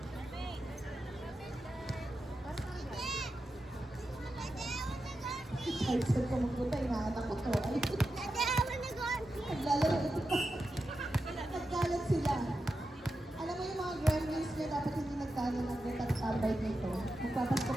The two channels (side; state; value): both; normal; correlation 0.90